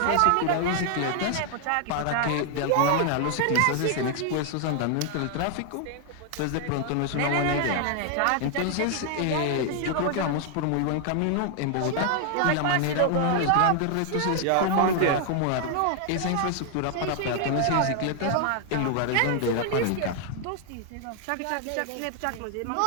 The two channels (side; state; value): both; different; correlation 0.00